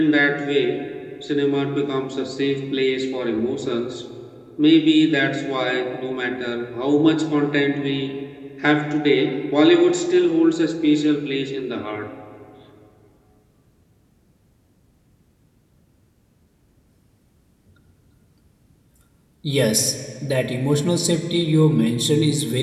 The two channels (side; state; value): both; identical; correlation 1.00